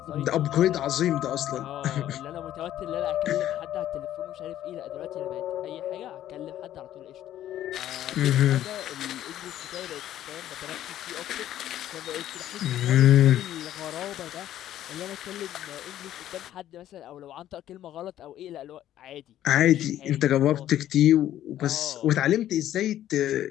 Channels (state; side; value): quieter; right; 12.3 dB